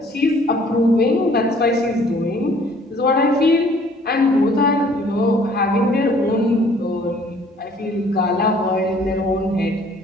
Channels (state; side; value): normal; both; correlation 0.57